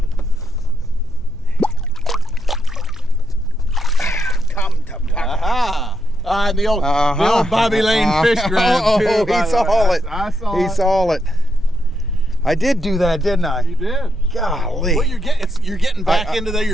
Come to Papa. And the old Bobby Lane fish grab, too. He saw it. I saw He it. saw it. I did do that, didn't I? You did. Golly. Well, you're getting back into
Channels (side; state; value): right; noise; rumble, 23 dB below the sound